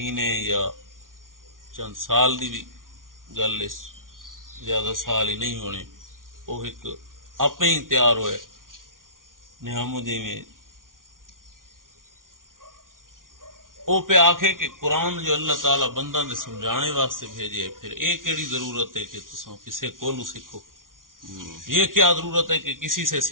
یا چند سال دی بھی گل، اس زیادہ سال ہی نہیں ہونے، وہ ایک آپ ہی تیار ہوئے نعمودی میں، وہ پہ آکھے کہ قرآن جو اللہ تعالیٰ بندہ نے سمجھانے واسطے بھیجے، پھر ایک کیڑی ضرورت ہے کہ تساں کسے کولو سیکھو، یہ کیا ضرورت ہے کہ کسی سے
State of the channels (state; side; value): late; left; 0.89 ms